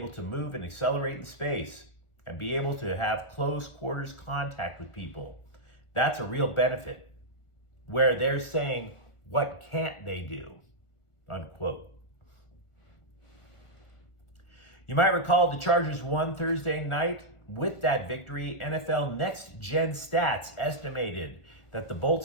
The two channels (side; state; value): right; late; 1.4 ms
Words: to move and accelerate in space and be able to have close quarters contact with people. That's a real benefit. Where they're saying, what can't they do? Unquote. You might recall the Chargers won Thursday night. With that victory, NFL Next Gen Stats estimated that the